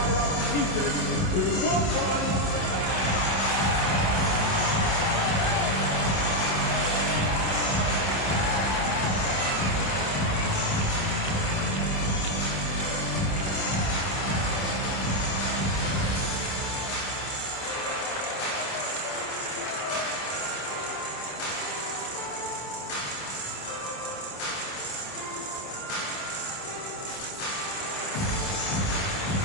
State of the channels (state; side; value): late; right; 27 ms